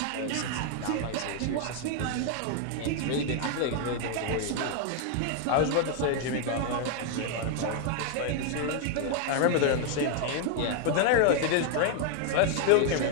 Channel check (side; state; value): both; different; correlation 0.00